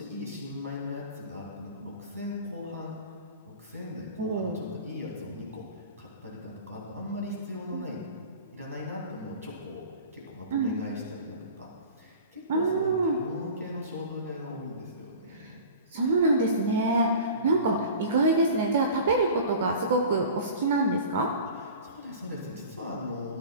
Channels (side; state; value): both; inverted; correlation -0.39